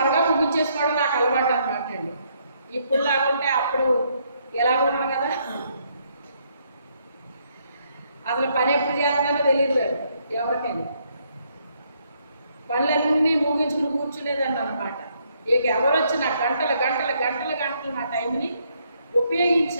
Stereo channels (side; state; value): both; inverted; correlation -0.72